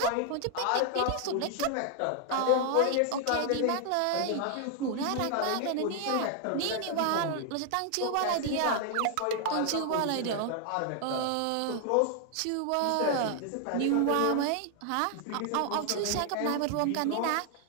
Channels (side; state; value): both; different; correlation 0.00